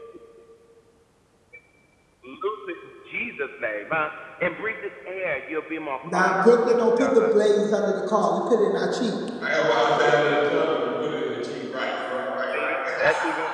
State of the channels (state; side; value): identical; both; correlation 1.00